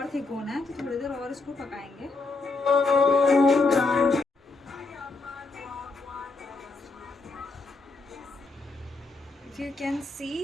थिक होना है तो थोड़ी देर और इसको पकाएंगे. If you can see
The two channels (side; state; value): right; quieter; 3.7 dB